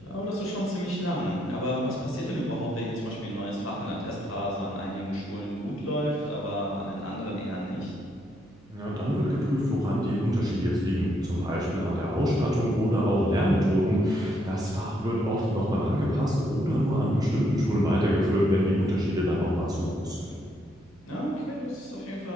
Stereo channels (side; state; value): right; noise; hum, 27 dB below the sound